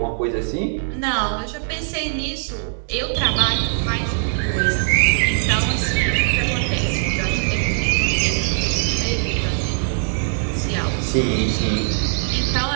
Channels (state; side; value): silent; left; 65 dB below the other